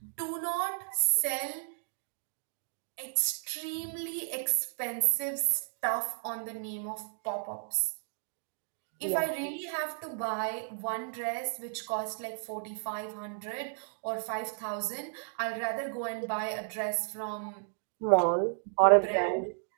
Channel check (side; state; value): left; silent; digital silence